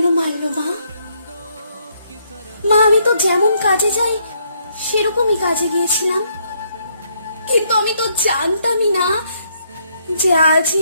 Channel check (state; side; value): inverted; both; correlation -0.72